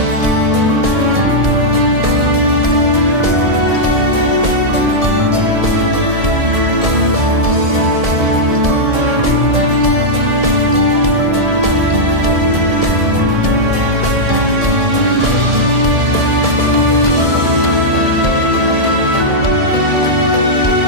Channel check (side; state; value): left; late; 1.7 ms